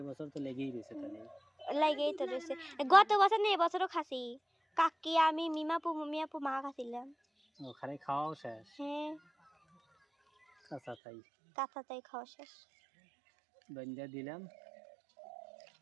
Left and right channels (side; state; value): left; drops out; at 11.0 s